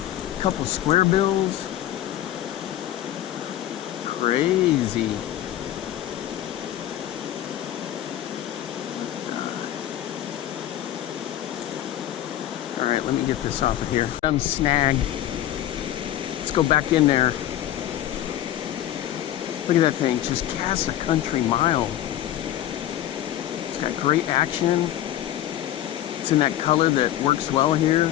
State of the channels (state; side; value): quieter; right; 12.6 dB